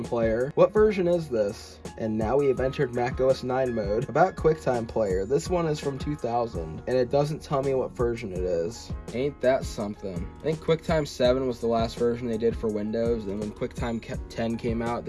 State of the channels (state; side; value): identical; both; correlation 1.00